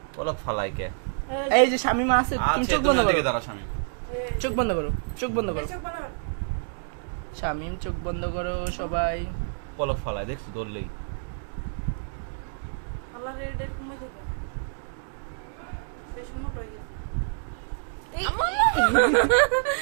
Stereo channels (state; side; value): silent; left; digital silence